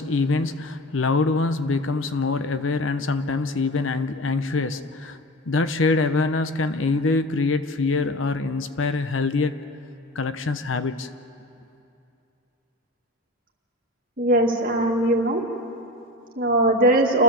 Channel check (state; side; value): normal; both; correlation 0.31